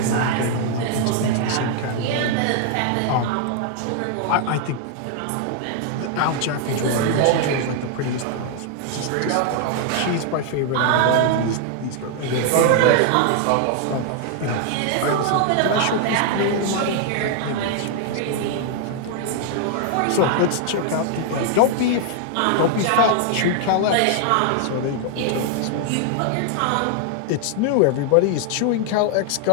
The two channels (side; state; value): both; different; correlation 0.00